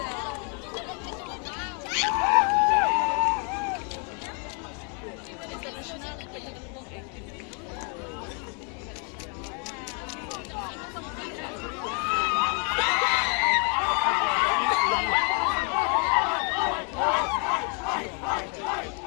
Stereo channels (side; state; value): right; quieter; 37.7 dB